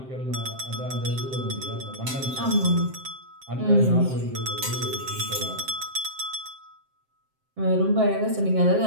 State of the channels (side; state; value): left; late; 7.6 ms